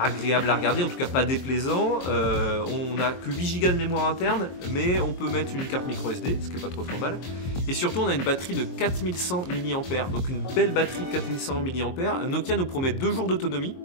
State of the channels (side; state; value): right; late; 23 ms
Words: à regarder, en tout cas pas déplaisant. On n'a que 8 Go de mémoire interne, mais on peut mettre une carte micro SD, ce qui n'est pas trop mal. Et surtout on a une batterie de 4100 mAh, donc une belle batterie de 4100 mAh. Nokia nous promet 2 jours d'autonomie,